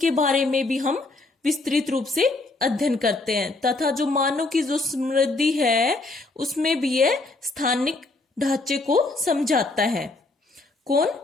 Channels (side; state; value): right; quieter; 3.2 dB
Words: बारे में भी हम विस्तृत रूप से अध्ययन करते हैं। तथा जो मानव की जो समृद्धि है उसमें भी यह स्थानिक ढांचे को समझाता है। कौन?